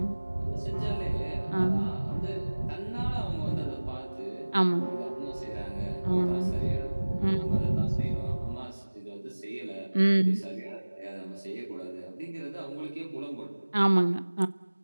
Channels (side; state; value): both; inverted; correlation -1.00